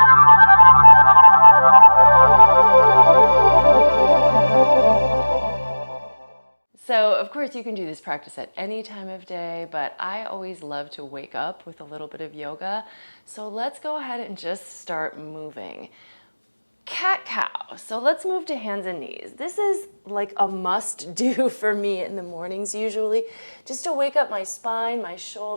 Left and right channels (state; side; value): inverted; both; correlation -1.00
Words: So of course you can do this practice at any time of day, but I always love to wake up with a little bit of yoga. So let's go ahead and just start moving. Cat-cow. So let's move to hands and knees. This is like a must do for me in the mornings usually, just to wake up my spine, my